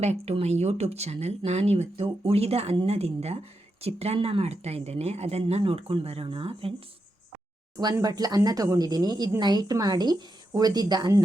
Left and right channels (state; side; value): normal; both; correlation 0.86